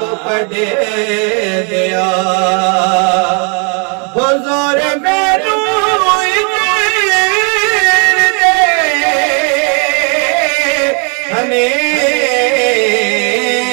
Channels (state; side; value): quieter; left; 36.2 dB